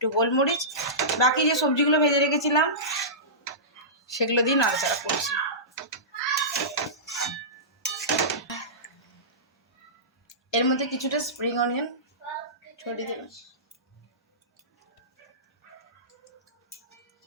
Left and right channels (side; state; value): both; normal; correlation -0.19